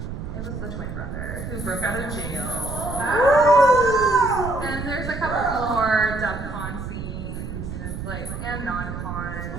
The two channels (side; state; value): right; noise; rumble, 7 dB below the sound